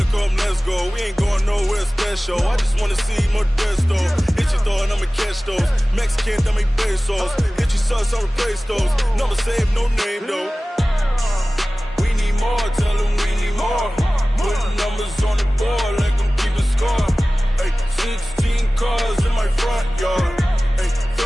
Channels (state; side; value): normal; both; correlation 0.97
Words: come, let's go. We ain't going nowhere special. I just wanna see more desto. Hit your thought, I'ma catch those. Mexican, I make pesos. Hit your sus, I'll replace those. Number save, no name though. We need more, tell them we need more. Putting numbers on the board, like them keep a score. Hey, 16 cars in my front yard. Hey,